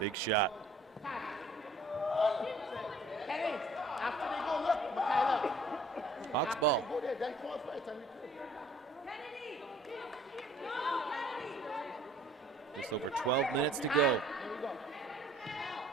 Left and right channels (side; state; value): both; normal; correlation 0.55